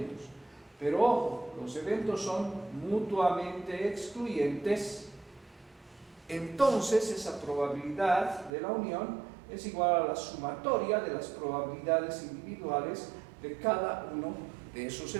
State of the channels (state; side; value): drops out; left; at 8.5 s